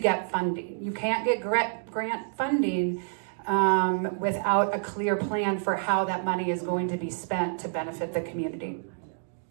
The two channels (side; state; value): left; silent; 59 dB below the other